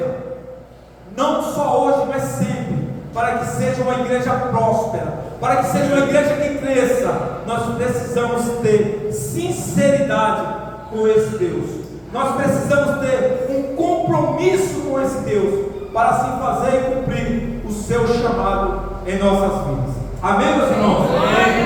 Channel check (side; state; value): both; identical; correlation 1.00